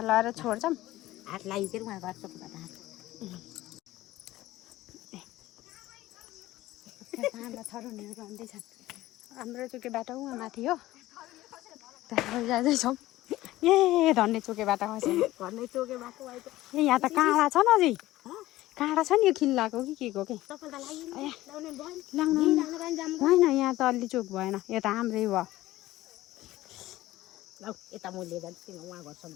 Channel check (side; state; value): right; quieter; 16.4 dB